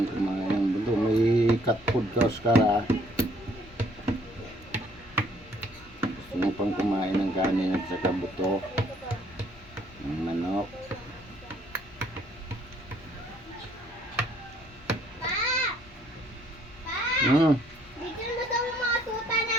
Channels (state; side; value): normal; both; correlation 0.63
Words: kumain ng buto. May cat food ka Oscar ah. Gusto mo pang kumain ng kanin at saka buto. Ng manok. Bigyan mo daw yung mga tuta